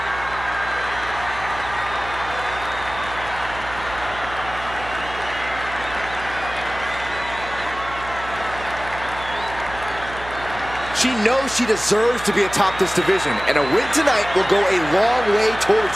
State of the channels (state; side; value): noise; right; hum, 13 dB below the sound